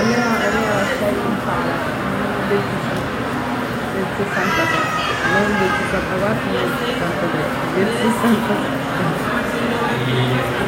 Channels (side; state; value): both; identical; correlation 1.00